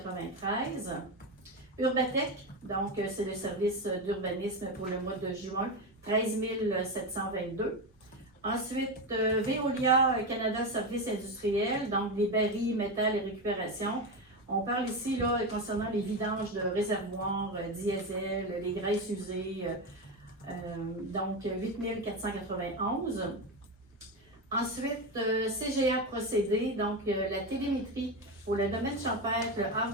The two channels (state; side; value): normal; both; correlation 0.16